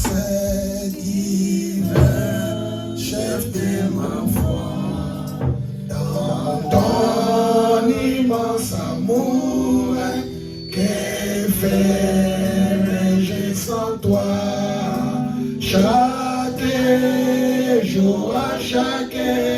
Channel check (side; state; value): both; identical; correlation 1.00